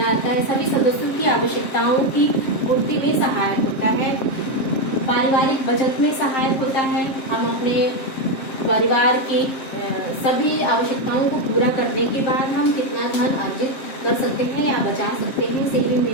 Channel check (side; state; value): right; late; 7.5 ms